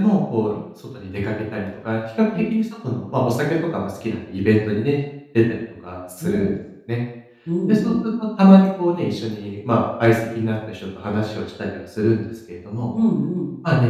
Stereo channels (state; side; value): identical; both; correlation 1.00